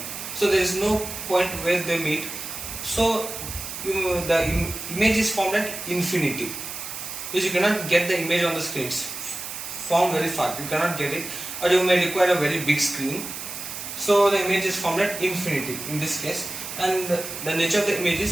So there is no point where they meet. So the image is formed at infinity. Because you cannot get the image on the screen. It's formed very far. You cannot get it, or you may require a very big screen. So the image is formed at infinity in this case, and the nature of the image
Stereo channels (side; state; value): right; noise; hiss, 8 dB below the sound